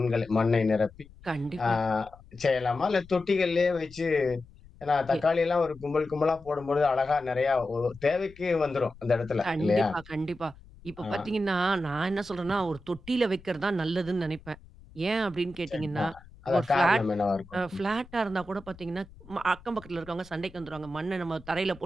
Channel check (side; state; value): left; noise; rumble, 22 dB below the sound